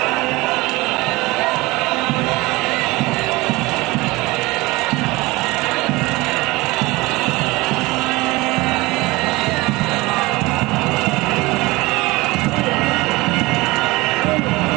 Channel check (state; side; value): quieter; left; 21.8 dB